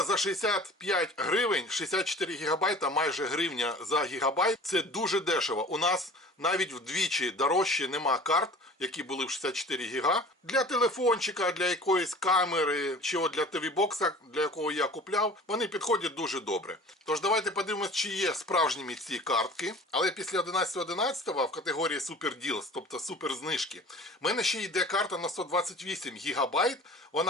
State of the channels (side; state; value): both; normal; correlation 0.43